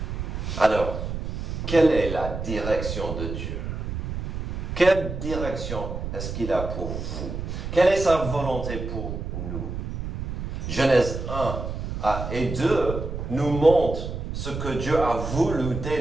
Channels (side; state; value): right; noise; rumble, 5 dB below the sound